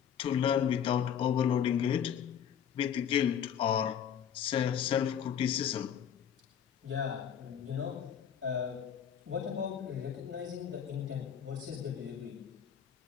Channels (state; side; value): quieter; right; 8.6 dB